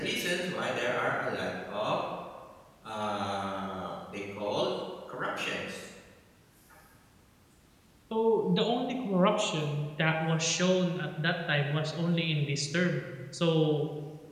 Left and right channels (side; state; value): both; identical; correlation 1.00